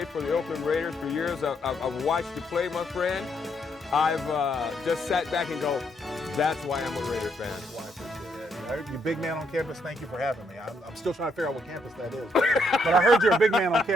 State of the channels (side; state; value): both; normal; correlation 0.74